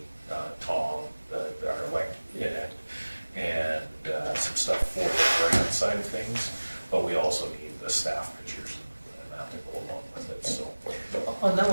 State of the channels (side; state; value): both; inverted; correlation -1.00